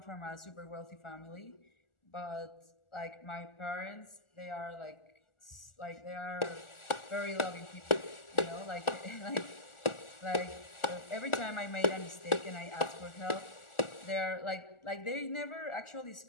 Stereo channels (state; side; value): late; right; 1.4 ms